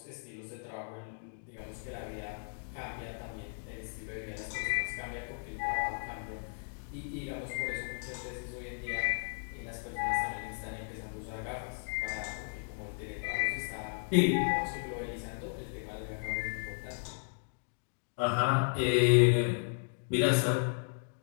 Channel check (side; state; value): right; silent; digital silence